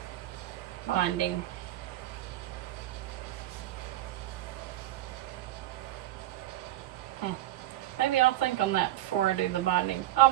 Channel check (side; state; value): left; quieter; 14.8 dB